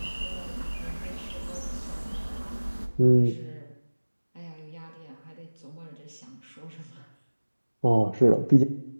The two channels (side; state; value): both; inverted; correlation -1.00